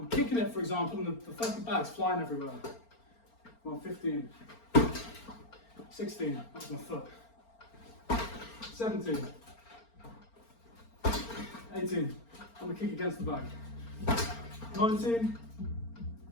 kicking it, for example, and the fucking bag's flying everywhere. Come on, 15, 16, that's my foot, 17, 18, I'm gonna kick against the bag, 19,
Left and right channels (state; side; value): late; right; 4.4 ms